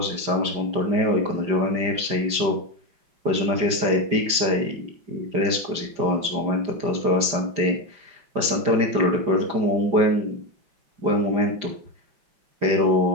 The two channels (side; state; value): left; late; 5.1 ms